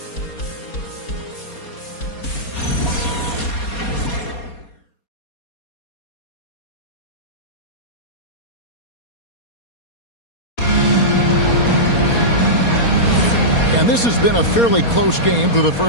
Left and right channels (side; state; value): right; late; 4.2 ms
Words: And this has been a fairly close game through the